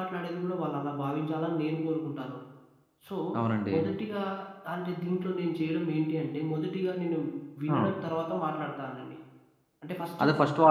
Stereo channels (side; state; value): both; identical; correlation 1.00